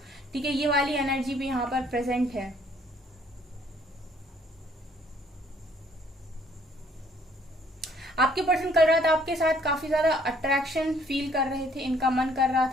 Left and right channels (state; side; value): normal; both; correlation 0.62